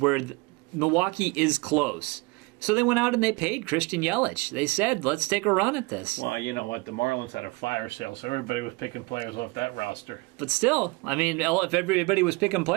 Milwaukee is close. So they went out and they paid Christian Yelich. They said, let's take a run at this. Well, you know what? The Marlins had a fire sale, so everybody was picking players off that roster. But still, I mean, if everybody was picking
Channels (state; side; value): quieter; left; 25.7 dB